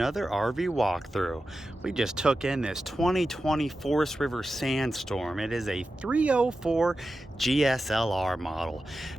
RV walkthrough. We just took in this 2020 Forest River Sandstorm. It is a 304 GSLR model.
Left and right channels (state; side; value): normal; both; correlation 0.92